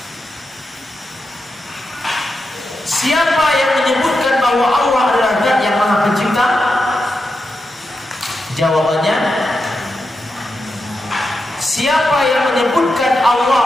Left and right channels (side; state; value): both; normal; correlation 0.88